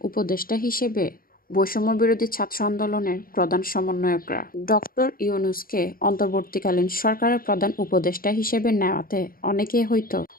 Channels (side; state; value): right; late; 0.42 ms